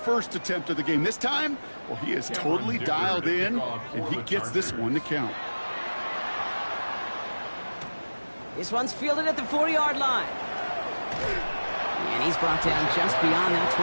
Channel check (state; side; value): inverted; both; correlation -1.00